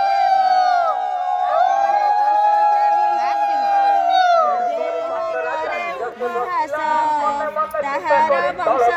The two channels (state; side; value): identical; both; correlation 1.00